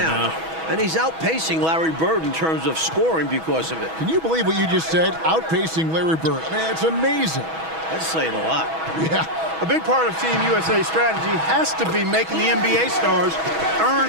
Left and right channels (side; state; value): left; late; 6.2 ms